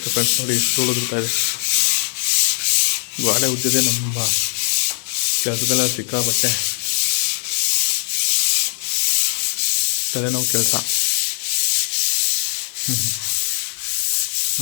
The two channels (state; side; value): silent; right; digital silence